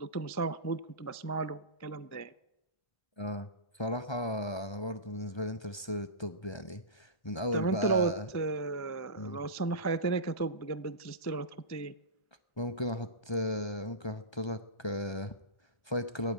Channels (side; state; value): right; late; 1.3 ms